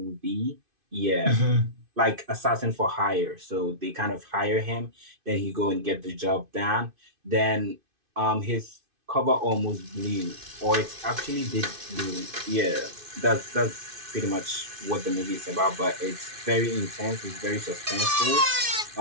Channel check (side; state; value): left; late; 2.5 ms